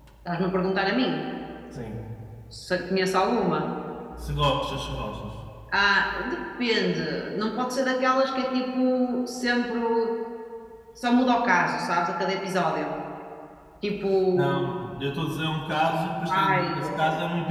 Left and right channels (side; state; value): both; identical; correlation 1.00